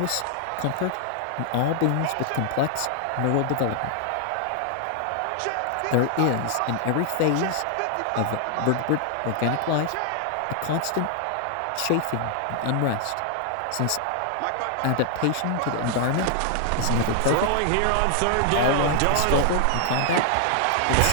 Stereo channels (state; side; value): different; both; correlation 0.00